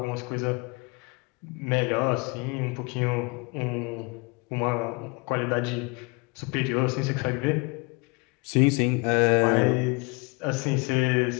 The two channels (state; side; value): quieter; right; 29.2 dB